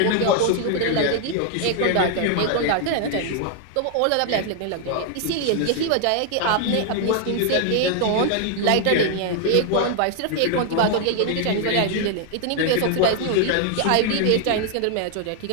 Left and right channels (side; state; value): both; different; correlation 0.00